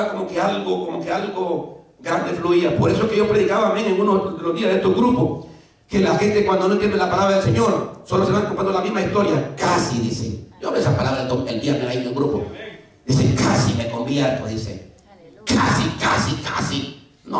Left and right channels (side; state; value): both; identical; correlation 1.00